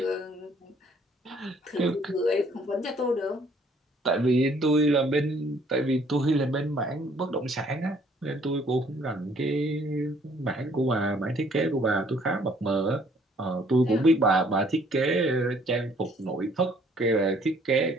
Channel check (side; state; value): both; normal; correlation 0.61